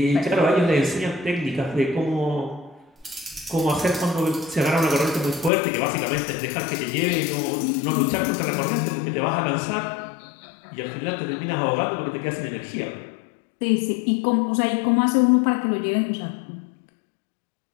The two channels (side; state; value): right; drops out; at 5.5 s